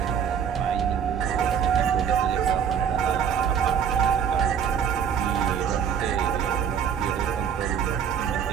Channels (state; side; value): quieter; left; 7.9 dB